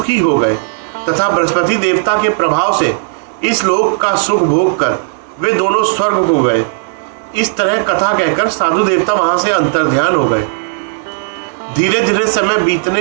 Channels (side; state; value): left; silent; 70 dB below the other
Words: हो गए तथा बृहस्पति देवता के प्रभाव से इस लोक का सुख भोग कर वे दोनों स्वर्ग हो गए। इस तरह कथा कहकर साधु देवता वहां से अंतर्ध्यान हो गए। धीरे धीरे समय